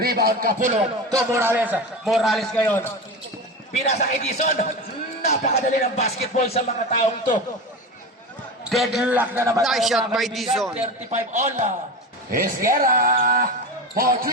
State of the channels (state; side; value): normal; both; correlation 0.25